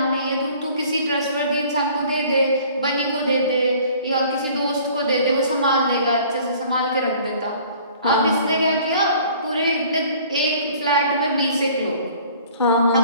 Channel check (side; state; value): both; inverted; correlation -0.52